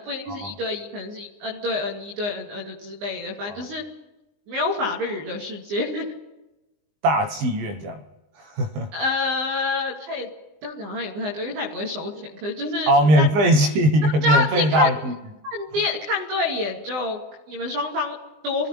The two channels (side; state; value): left; late; 20 ms